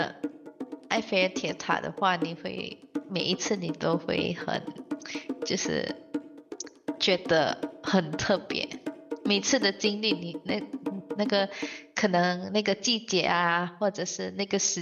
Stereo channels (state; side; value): identical; both; correlation 1.00